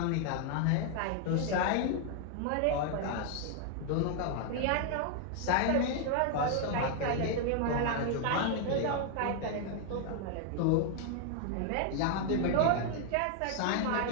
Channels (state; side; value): different; both; correlation 0.00